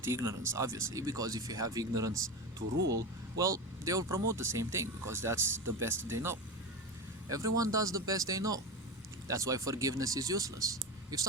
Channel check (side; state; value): both; normal; correlation 0.21